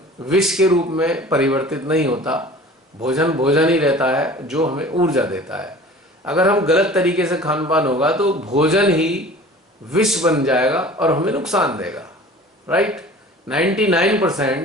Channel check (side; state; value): both; normal; correlation 0.43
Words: विष के रूप में परिवर्तित नहीं होता। भोजन भोजन ही रहता है जो हमें ऊर्जा देता है। अगर हम गलत तरीके से खान पान होगा तो भोजन ही विष बन जाएगा और हमें नुकसान देगा। राइट?